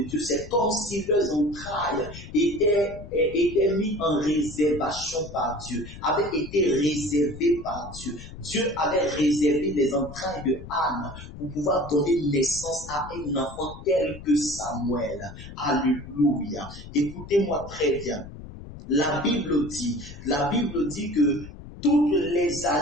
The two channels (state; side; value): noise; left; rumble, 14 dB below the sound